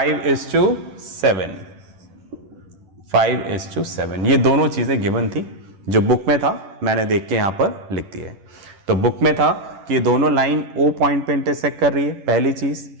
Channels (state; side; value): late; left; 10 ms